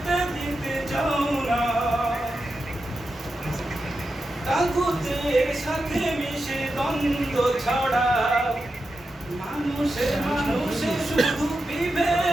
দিতে চাও না। তাগুতের সাথে মিশে দ্বন্দ্ব ছড়াও, মানুষে মানুষে শুধু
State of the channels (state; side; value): normal; both; correlation 0.89